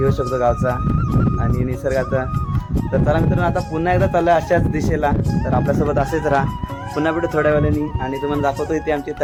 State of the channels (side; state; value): both; identical; correlation 1.00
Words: शकतो गावचा आणि निसर्गाचा. तर चला मित्रांनो, आता पुन्हा एकदा चाललं अशाच दिशेला. तर आपल्यासोबत असेच राहा. पुन्हा भेटू थोड्या वेळाने आणि तुम्हाला दाखवतो इथे आमची